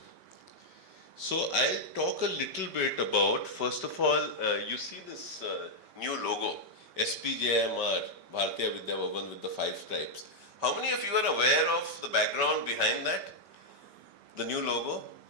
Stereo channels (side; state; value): left; late; 5.2 ms